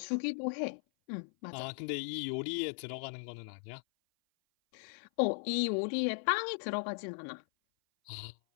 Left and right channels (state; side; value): silent; right; 53 dB below the other